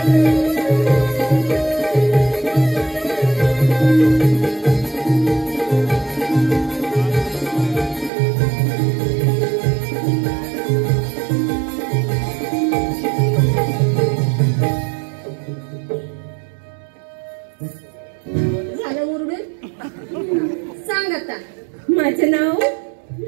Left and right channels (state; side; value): drops out; left; at 8.1 s